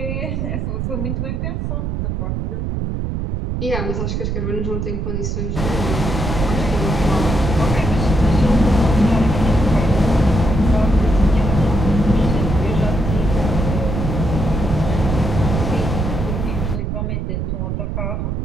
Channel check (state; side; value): noise; right; rumble, 2 dB below the sound